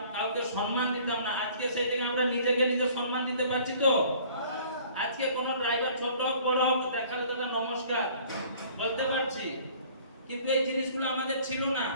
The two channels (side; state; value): both; inverted; correlation -0.52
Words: কাউকে সম্মান দিতাম না, আজকে সেই থেকে আমরা নিজেকে নিজে সম্মান দিতে পারছি তো। আজকে কোন ড্রাইভার ছোট হোক বড় হোক দেখালে তো নমস্কার বলতে পারছি, কিন্তু এই জিনিসগুলো আমাদের ছিল না,